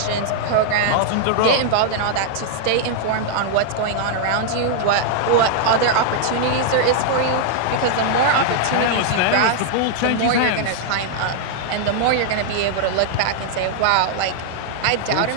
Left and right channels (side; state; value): both; different; correlation -0.01